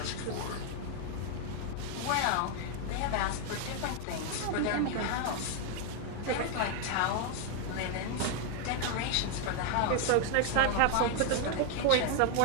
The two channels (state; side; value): different; both; correlation 0.00